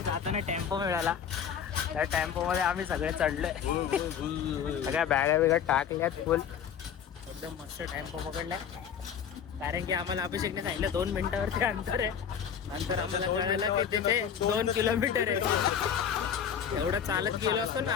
जाताना टेम्पो मिळाला. त्या टेम्पो मध्ये आम्ही सगळे चढलोय. सगळ्या बॅगा बिगा टाकल्यात फुल. एकदम मस्त टेम्पो पकडलाय. कारण की आम्हाला अभिषेकने सांगितलं 2 मिनिटावरती अंतर आहे. नंतर आम्हाला कळालं की तिथे 2 किलोमीटर आहे. एवढं चालत गेलो असतो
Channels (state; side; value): quieter; right; 8.1 dB